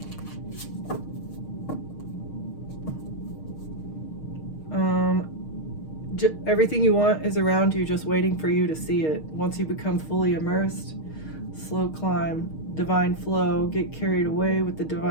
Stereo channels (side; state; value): right; late; 6.4 ms